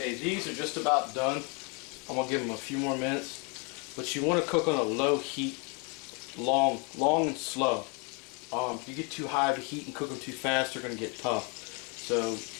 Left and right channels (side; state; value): right; quieter; 33.3 dB